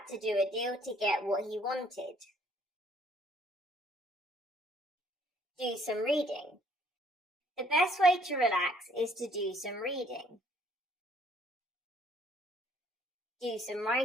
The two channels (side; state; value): both; normal; correlation 0.63